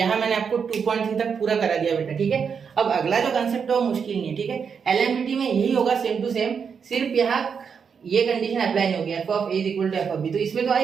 मैंने आपको 2.3 तक पूरा करा दिया बेटा, ठीक है। अब अगला जो कंसेप्ट है वो मुश्किल नहीं है, ठीक है, एलएमटीटी में यही होगा सेम टू सेम, सिर्फ यहाँ ये कंडीशन अप्लाई नहीं होगी, f of a equal to f of b, तो इसमें तो आ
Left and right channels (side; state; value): left; quieter; 6.5 dB